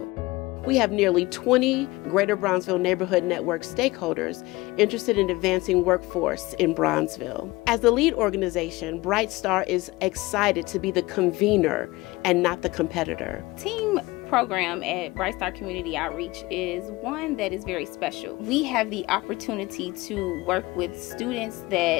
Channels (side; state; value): right; quieter; 20.9 dB